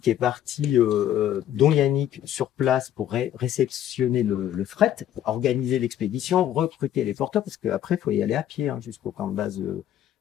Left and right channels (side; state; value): right; quieter; 11.2 dB